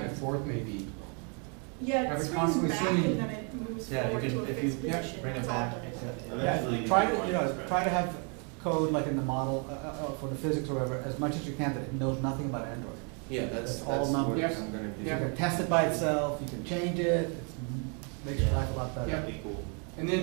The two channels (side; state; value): left; quieter; 37.7 dB